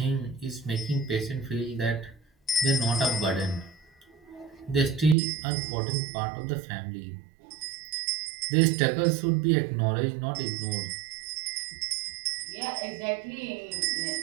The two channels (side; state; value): left; drops out; at 5.2 s